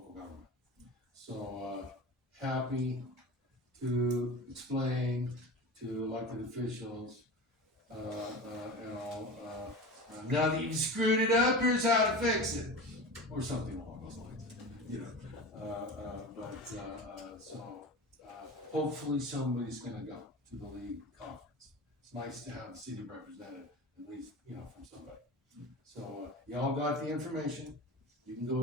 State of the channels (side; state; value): both; normal; correlation 0.30